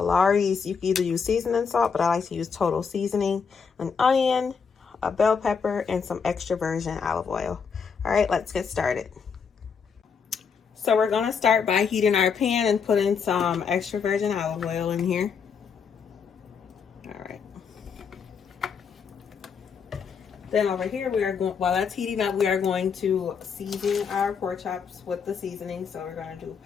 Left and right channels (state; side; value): quieter; right; 6.1 dB